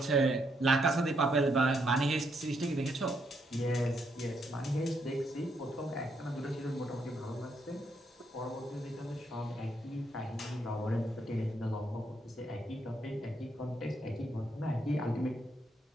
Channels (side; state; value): both; normal; correlation 0.75